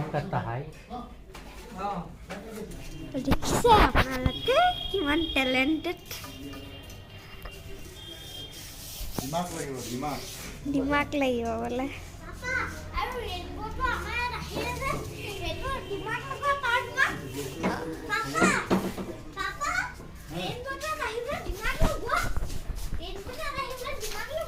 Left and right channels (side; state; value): both; identical; correlation 1.00